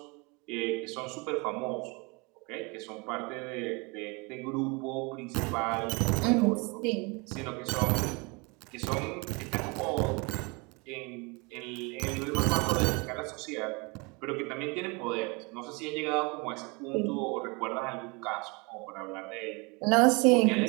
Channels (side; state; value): left; quieter; 28.9 dB